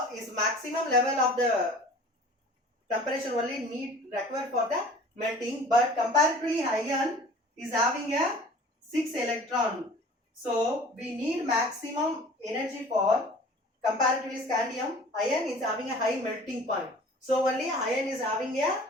is maximum level of the temperature only required for the melting, but comparatively iron is having a 6 electron. So we need maximum energy for comparatively scandium. Iron is having a high melting point. So only iron is having a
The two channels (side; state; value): both; normal; correlation 0.46